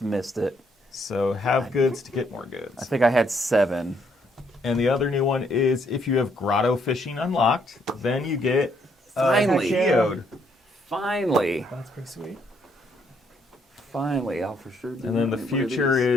missed it. So have goods to get more I goods. think I had 7. And the other new one is if you have grotto fishing unlocked, then you get Finally. geode. Finally. That's pretty sweet. Finally, I'll for sure do And then the one of future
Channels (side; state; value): both; normal; correlation 0.71